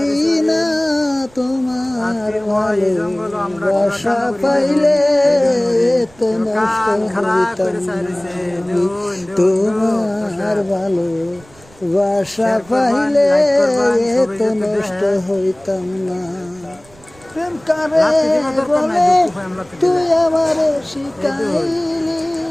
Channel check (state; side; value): noise; right; rumble, 26 dB below the sound